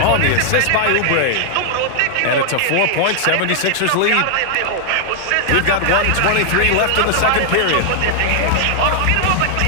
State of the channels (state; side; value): different; both; correlation 0.00